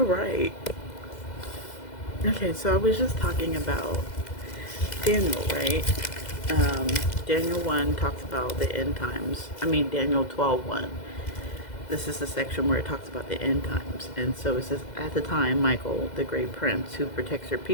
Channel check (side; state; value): right; late; 2.0 ms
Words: right. Okay, so I was just talking about Daniel, right? Um, Daniel 1 talks about the end times. I mean, Daniel 12:1. This is the section where it talks about the end times. And so it says, at the time, Michael, the great prince who protects your